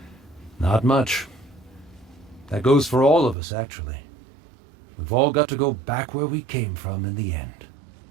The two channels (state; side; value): drops out; left; at 3.4 s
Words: Not much. That goes for all of us, actually. We've all got to go back where we came from in the end.